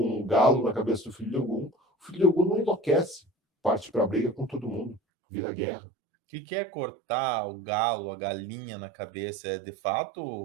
um galo na cabeça do filho de Ogum. O filho de Ogum não enlouquece, parte para a briga com todo mundo, vira guerra. O que é cortar o galo, a galinha na cabeça? É de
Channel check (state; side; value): drops out; left; at 5.0 s